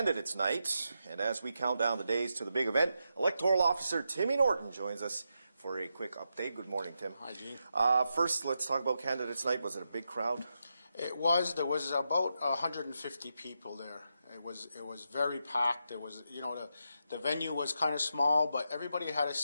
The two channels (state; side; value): inverted; both; correlation -0.85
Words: Night, and as we count down the days to the big event, Electoral Officer Timmy Norton joins us for a quick update. Good morning, Tim. Hi, Gene. First, let's talk about Candidates Night. Was it a big crowd? It was. There was about 150 people there. It was very packed. It was, the venue was kind of small, but everybody had a